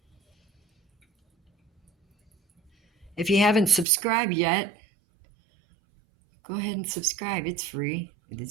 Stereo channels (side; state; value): left; drops out; at 3.9 s